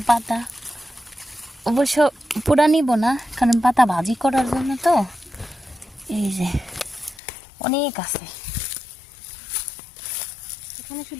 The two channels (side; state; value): right; drops out; at 7.2 s